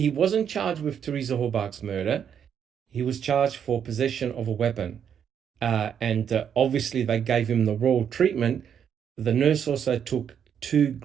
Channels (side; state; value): left; quieter; 8.3 dB